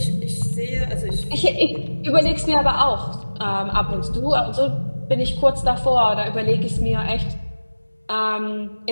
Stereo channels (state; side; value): inverted; both; correlation -1.00